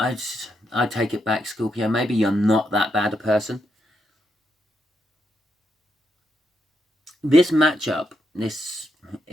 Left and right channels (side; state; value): both; normal; correlation 0.81